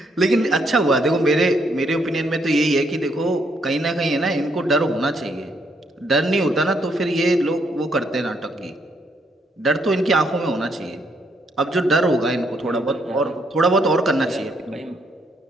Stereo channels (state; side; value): normal; both; correlation 0.73